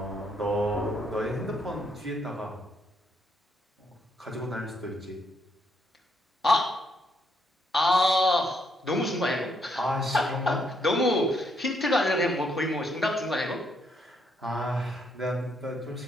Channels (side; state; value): both; normal; correlation 0.74